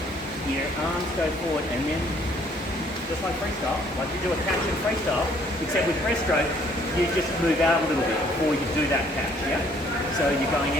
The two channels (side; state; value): both; normal; correlation 0.62